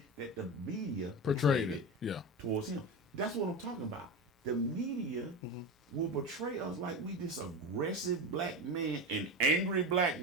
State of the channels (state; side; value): normal; both; correlation 0.22